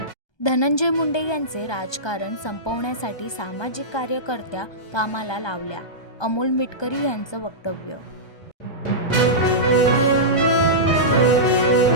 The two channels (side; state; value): right; late; 1.2 ms